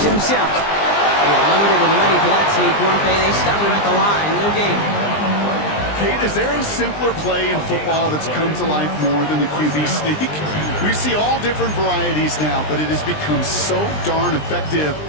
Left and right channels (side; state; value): right; late; 20 ms